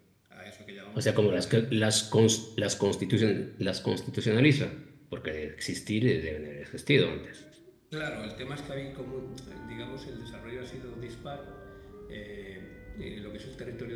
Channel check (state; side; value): identical; both; correlation 1.00